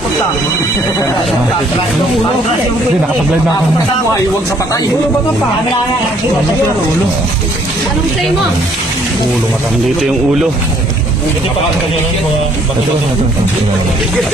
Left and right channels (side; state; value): both; normal; correlation 0.63